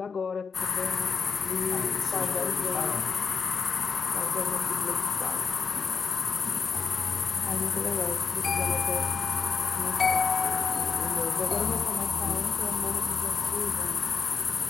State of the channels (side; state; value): right; quieter; 5.5 dB